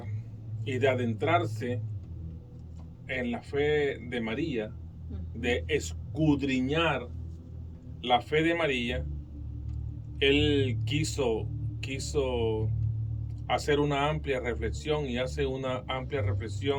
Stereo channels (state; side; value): identical; both; correlation 1.00